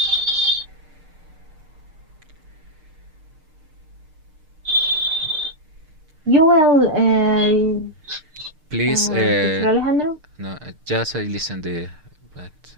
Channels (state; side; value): late; left; 6.6 ms